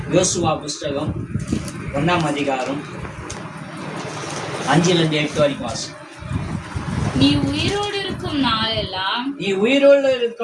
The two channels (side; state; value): both; identical; correlation 1.00